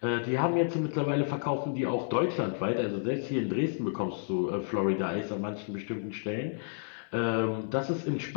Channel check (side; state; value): right; silent; digital silence